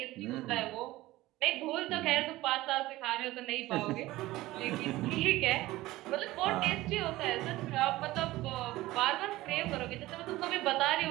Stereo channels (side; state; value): left; quieter; 17.6 dB